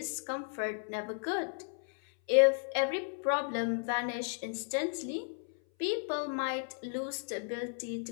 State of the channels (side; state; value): right; silent; 55 dB below the other